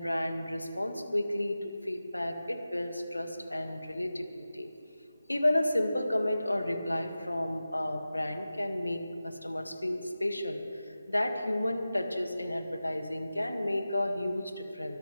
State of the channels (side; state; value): both; inverted; correlation -0.94